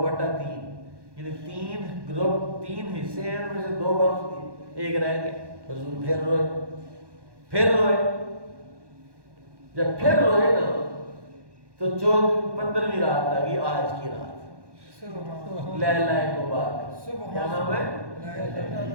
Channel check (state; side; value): late; left; 1.1 ms